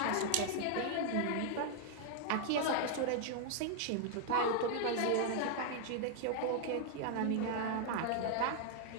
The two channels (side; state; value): both; different; correlation 0.00